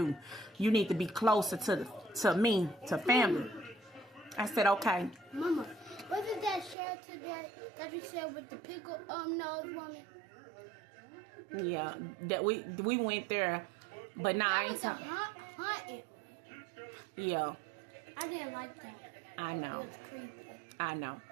You need to be closer to me, to family. I said, okay. Mama, wasn't that shelter that you said with the pickle nose woman? Yeah, that we went there, but nah, I ain't talking. hunting. Yeah. I didn't like that. I know. It was creepy. I know.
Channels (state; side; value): drops out; left; at 6.8 s